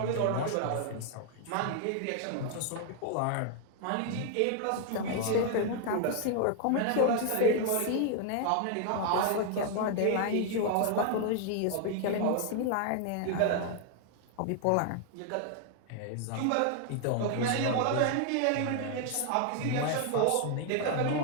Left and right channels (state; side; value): different; both; correlation 0.00